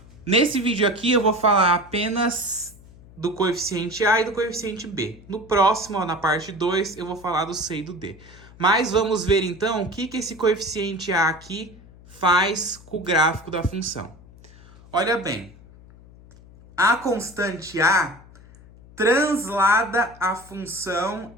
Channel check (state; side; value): noise; left; hum, 22 dB below the sound